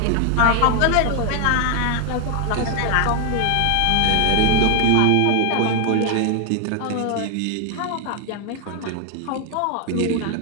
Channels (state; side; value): different; both; correlation 0.00